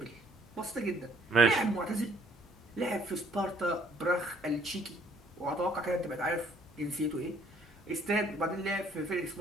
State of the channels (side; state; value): both; normal; correlation 0.62